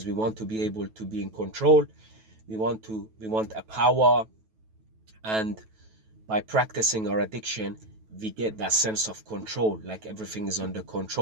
we want to be able to be in control. We want a power, and by practicing our addiction, we get that sense of control, like everything is under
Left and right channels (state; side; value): late; left; 9.2 ms